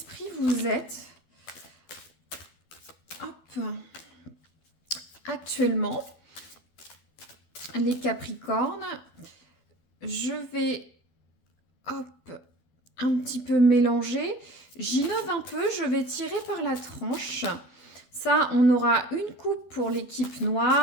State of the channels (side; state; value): right; late; 12 ms